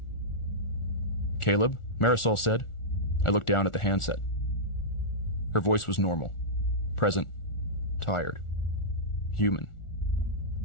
"Caleb?" Marisol said. I looked down at the handset. Her voice was normal. Present. Tired. Human.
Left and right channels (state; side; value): late; right; 1.4 ms